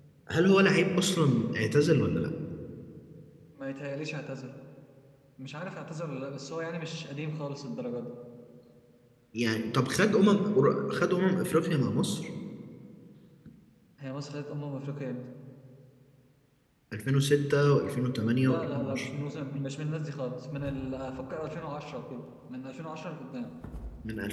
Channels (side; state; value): both; identical; correlation 1.00